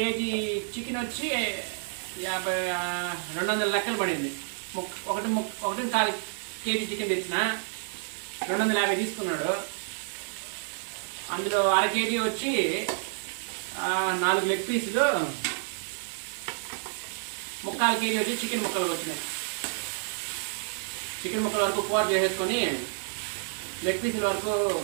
చికెన్ వచ్చి 200 లెక్కలు పడింది. 1.25 కేజీ చికెన్ తెచ్చిన 250 తీసుకున్నాడు. అందులో 1/2 కేజీ వచ్చి 4 లెగ్ పీసులు, 3/4 కేజీ వచ్చి చికెన్ ముక్కలు వచ్చినాయి. చికెన్ ముక్కల వరకు కూర చేసేసుకొని లెగ్ పీసుల వరకు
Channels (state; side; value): silent; left; 58 dB below the other